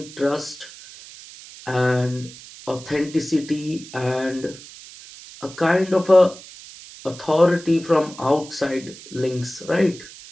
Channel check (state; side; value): noise; right; hiss, 17 dB below the sound